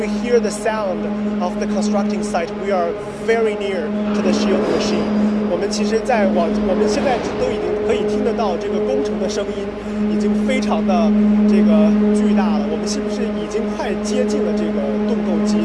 hear the sound of the constructing site, we are very near to the shield machine. 我们其实我们现在都已经可以听得到这个工程的声音，已经非常的这个巨大了。我们是不是已经快接近了这个盾构机，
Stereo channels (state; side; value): identical; both; correlation 1.00